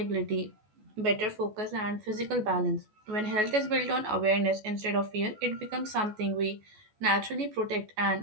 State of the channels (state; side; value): late; left; 14 ms